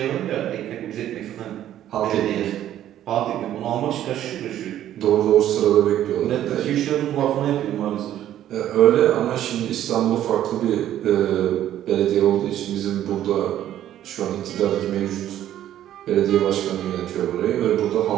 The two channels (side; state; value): left; quieter; 11.8 dB